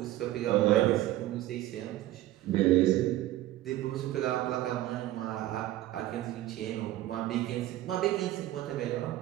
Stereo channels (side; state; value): left; quieter; 15.0 dB